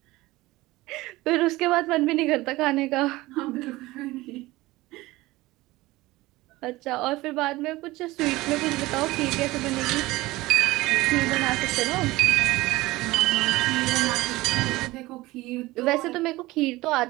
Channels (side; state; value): left; quieter; 19.4 dB